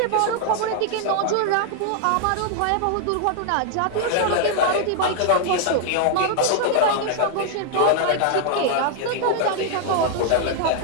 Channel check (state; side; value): different; both; correlation 0.00